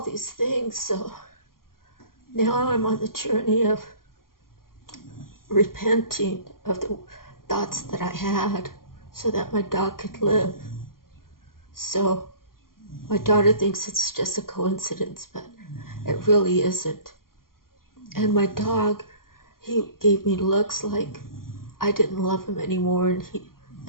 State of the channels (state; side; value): late; right; 0.92 ms